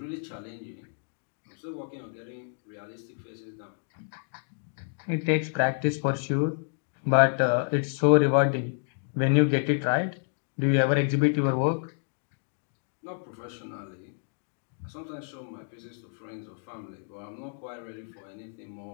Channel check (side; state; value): right; silent; digital silence